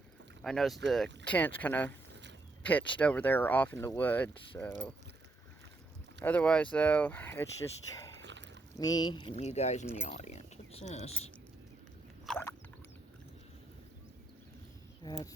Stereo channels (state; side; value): quieter; left; 3.2 dB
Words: I noticed the tent's kind of pitched over there off in the woods, so... Otherwise, though, it's just me and you guys in the audience. What's this? That's a